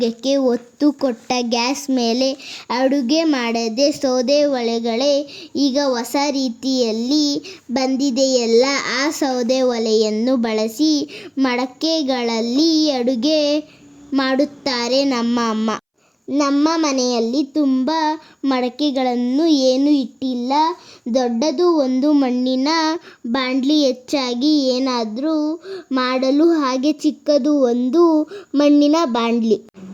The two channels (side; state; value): both; identical; correlation 1.00